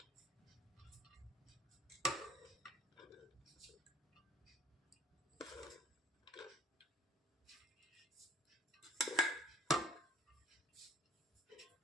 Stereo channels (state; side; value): normal; both; correlation 0.52